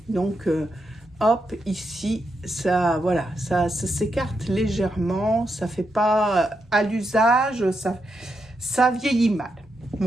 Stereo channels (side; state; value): both; normal; correlation 0.83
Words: donc, hop, ici, ça, voilà, ça s'écarte légèrement. Ça fait pas à l'usage, ça vieillit mal.